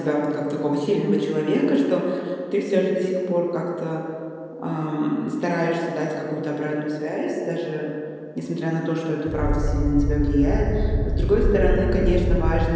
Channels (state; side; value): identical; both; correlation 1.00